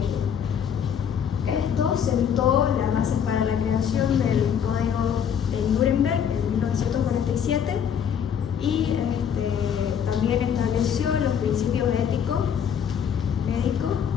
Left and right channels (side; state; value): right; quieter; 8.1 dB